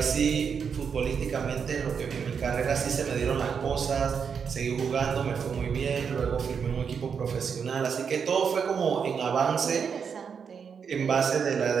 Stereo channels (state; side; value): quieter; left; 6.6 dB